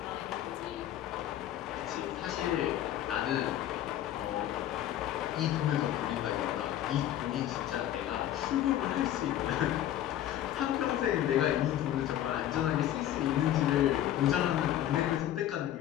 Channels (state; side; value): quieter; right; 12.1 dB